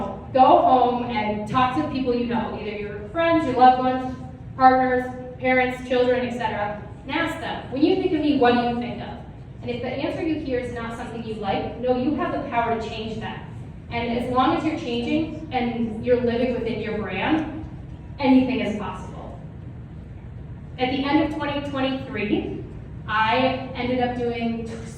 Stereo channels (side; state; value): both; identical; correlation 1.00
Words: home and talk to the people you know, either your friends, your loved ones, partners, parents, children, etc. And ask them, when you think of me, what do you think of? And if the answer you hear is not something you like, no, you have the power to change that. And as long as you're changing and you're living within your brand, anything is possible. At the end of 2023, I ended up doing